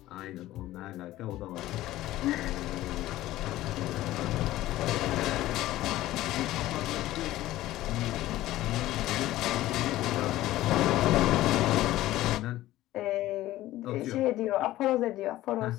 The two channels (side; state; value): right; quieter; 15.6 dB